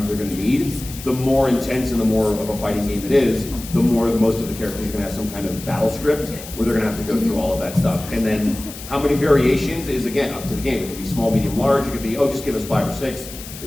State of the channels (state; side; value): noise; left; hiss, 13 dB below the sound